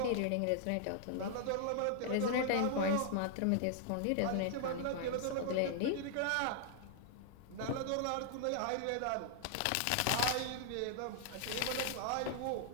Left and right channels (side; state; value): both; different; correlation -0.01